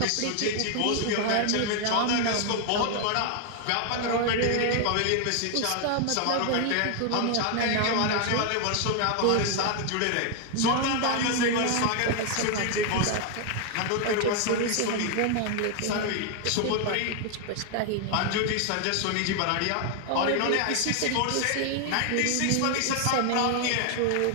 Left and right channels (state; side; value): different; both; correlation 0.00